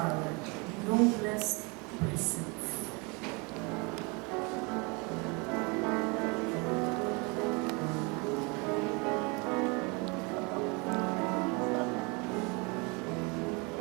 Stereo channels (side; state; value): left; quieter; 29.6 dB